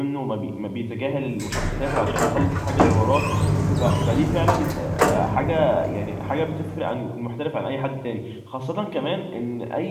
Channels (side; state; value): both; identical; correlation 1.00